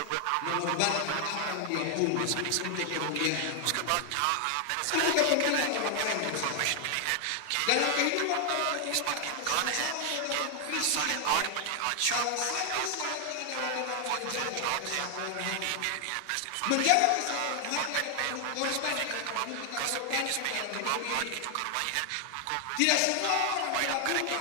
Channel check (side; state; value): both; different; correlation 0.00